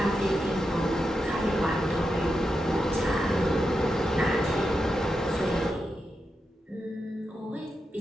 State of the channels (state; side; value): normal; both; correlation 0.87